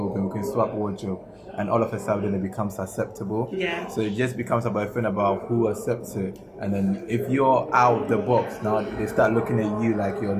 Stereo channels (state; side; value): identical; both; correlation 1.00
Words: we can swap wardrobe, and all of a sudden it becomes acceptable. Yeah. So it just becomes about a thing about who accepts it. And then if you're out of the box, now they start looking at you like you're